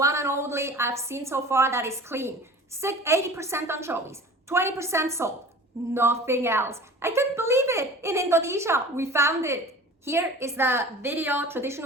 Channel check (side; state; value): both; normal; correlation 0.41